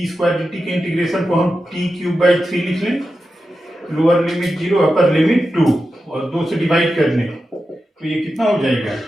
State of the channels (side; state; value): both; normal; correlation 0.91